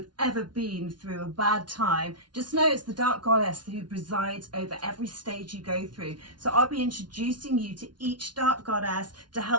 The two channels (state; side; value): late; left; 0.70 ms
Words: have ever been through a bad time, just know it's the Dark Goddess who presides over every stage you go through. So I'll be introducing you to each Dark Goddess to